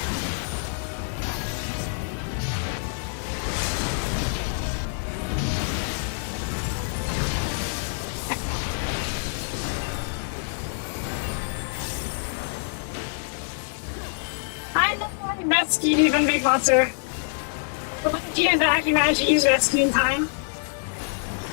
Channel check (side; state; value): right; silent; digital silence